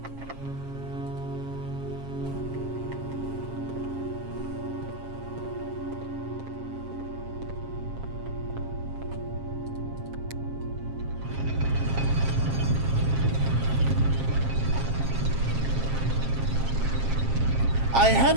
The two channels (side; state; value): left; late; 7.5 ms